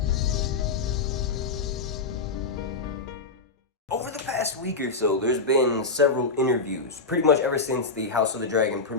Over the past week or so, there's been several interviews, pretty much ever since the House of the Dragon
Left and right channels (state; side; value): quieter; right; 3.9 dB